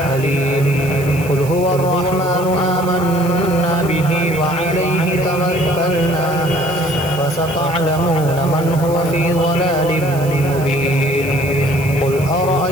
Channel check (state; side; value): noise; right; hiss, 16 dB below the sound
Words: قل هو الرحمن آمنا به وعليه توكلنا فستعلمون من هو في ضلال مبين. قل